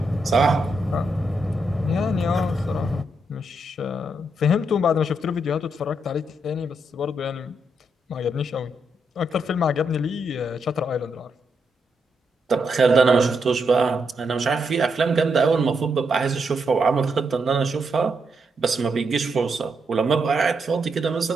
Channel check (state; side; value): normal; both; correlation 0.80